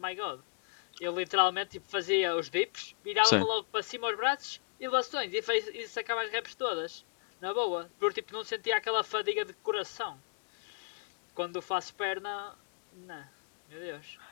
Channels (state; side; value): quieter; right; 34.3 dB